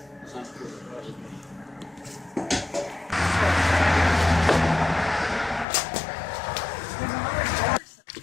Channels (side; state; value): right; drops out; at 5.7 s